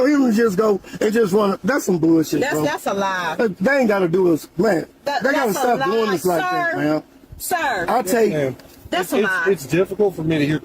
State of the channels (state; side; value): identical; both; correlation 1.00